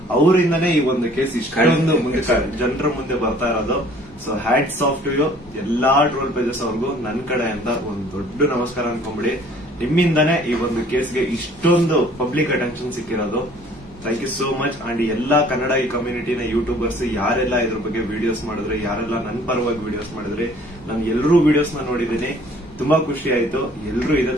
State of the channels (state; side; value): normal; both; correlation 0.55